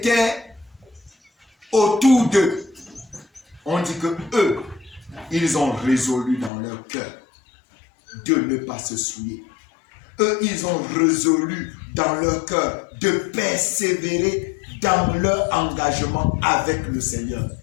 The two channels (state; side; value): drops out; right; at 6.5 s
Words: autour d'eux, on dit que eux, ils ont résolu dans leur cœur de ne pas se souiller. Eux, ils ont résolu dans leur cœur de persévérer dans leur engagement avec le Seigneur.